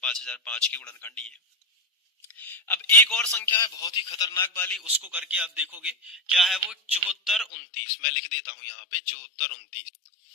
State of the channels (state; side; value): drops out; right; at 7.5 s